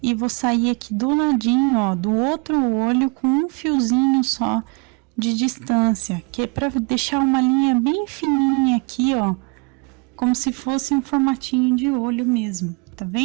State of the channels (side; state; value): left; quieter; 31.6 dB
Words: e vou sair aqui do ladinho, ó, do outro olho com um fiozinho só de distância, que é para deixar uma linha bem fininha aqui, ó, como se fosse um formatinho de olho mesmo, tá